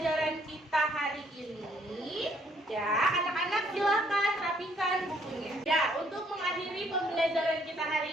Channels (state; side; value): normal; both; correlation 0.66